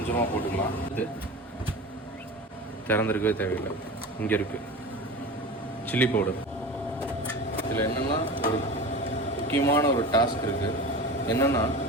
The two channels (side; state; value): both; normal; correlation 0.32